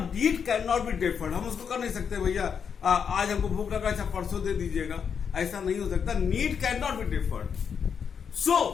need can not be deferred. हम उसको कर नहीं सकते भैया आज हमको भूख लगा, अच्छा परसों दे दीजिएगा, ऐसा नहीं हो सकता। Need can not be deferred.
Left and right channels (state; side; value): quieter; right; 6.9 dB